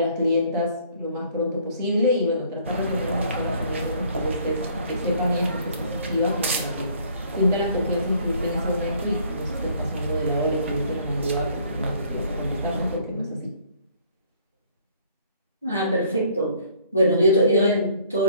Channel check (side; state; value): both; inverted; correlation -0.60